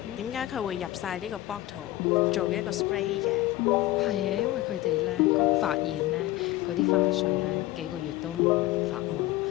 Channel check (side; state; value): right; quieter; 16.7 dB